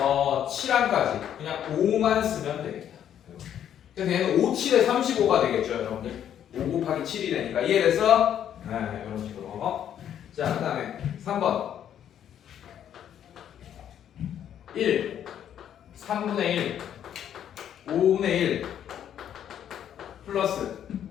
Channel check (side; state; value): right; quieter; 9.9 dB